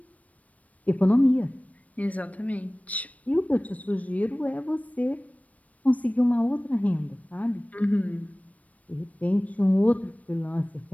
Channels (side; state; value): right; late; 0.069 ms